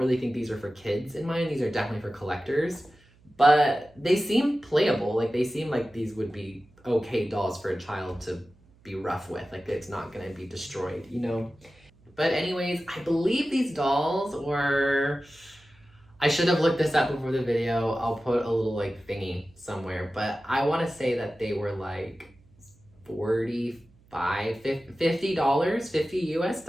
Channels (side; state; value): right; noise; hum, 29 dB below the sound